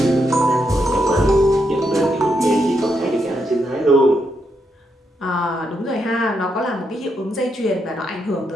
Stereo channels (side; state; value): both; normal; correlation 0.80